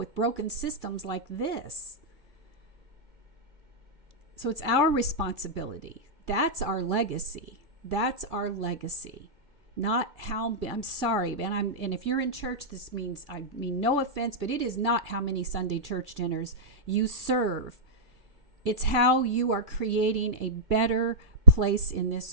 broken systems like this. So it's our responsibility. That's our legacy. That's our legacy. Not how, I'm sorry, and if you're in church, this means, I mean no offense, but it is not how many Sunday church dinners you serve. It's how you are creating a better place in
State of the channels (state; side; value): late; left; 1.9 ms